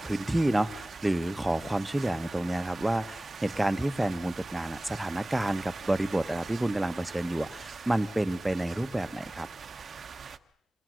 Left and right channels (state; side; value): normal; both; correlation 0.98